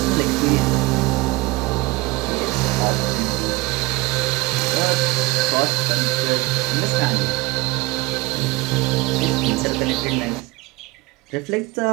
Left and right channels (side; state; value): left; quieter; 22.1 dB